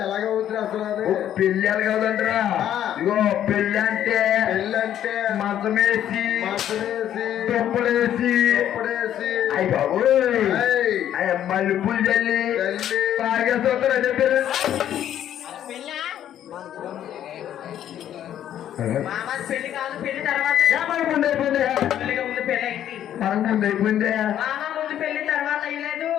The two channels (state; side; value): quieter; right; 10.9 dB